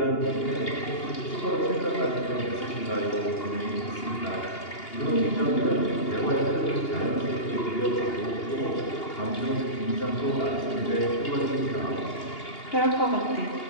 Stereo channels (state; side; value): late; right; 2.8 ms